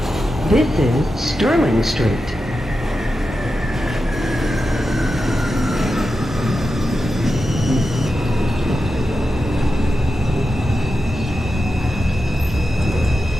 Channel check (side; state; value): both; normal; correlation 0.90